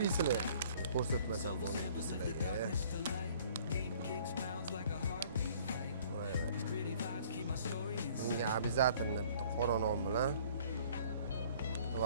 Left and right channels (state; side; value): inverted; both; correlation -0.55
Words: yeysizlar. Ko'rsatmasam bo'lmaydi sizlarga. Bunga обязательно qora non bilan